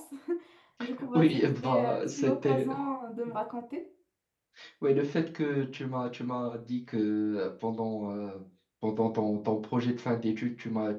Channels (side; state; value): both; identical; correlation 1.00